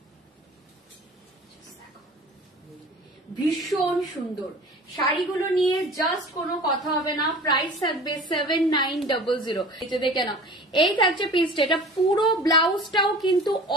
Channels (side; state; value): both; normal; correlation 0.41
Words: ভীষণ সুন্দর শাড়িগুলো নিয়ে জাস্ট কোনো কথা হবে না। প্রাইস থাকবে 7900। এটা দেখে নাও, এই থাকছে পিসটা। এটা পুরো ব্লাউজটাও কিন্তু